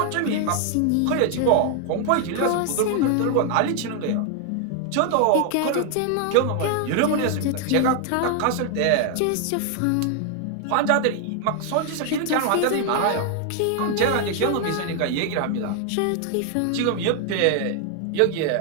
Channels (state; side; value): different; both; correlation 0.00